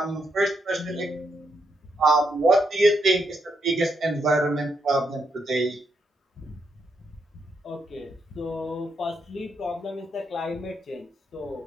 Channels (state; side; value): normal; both; correlation 0.79